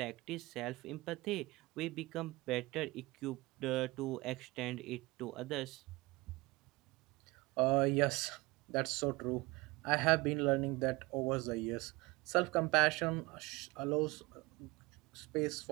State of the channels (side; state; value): left; quieter; 22.6 dB